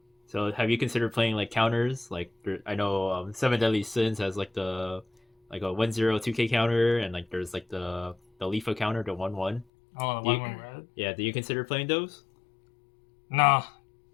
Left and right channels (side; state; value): right; drops out; at 9.7 s